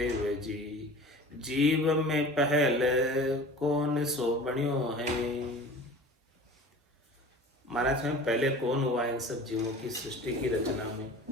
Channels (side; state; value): both; normal; correlation 0.41